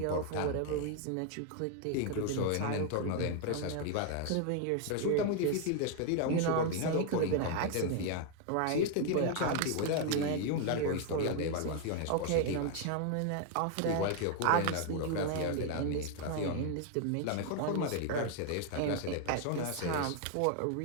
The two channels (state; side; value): different; both; correlation 0.00